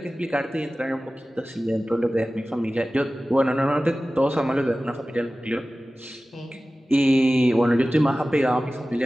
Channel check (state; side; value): normal; both; correlation 0.96